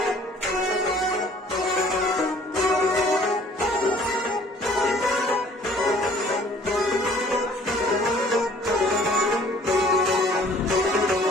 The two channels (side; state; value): both; normal; correlation 0.55